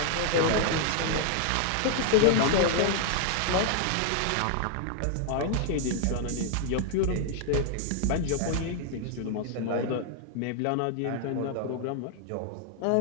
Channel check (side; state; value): both; different; correlation 0.00